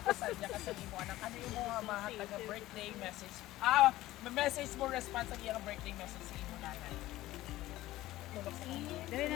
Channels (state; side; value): quieter; right; 16.3 dB